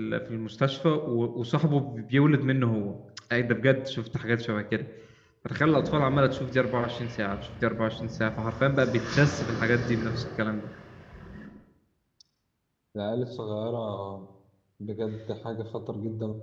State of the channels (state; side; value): identical; both; correlation 1.00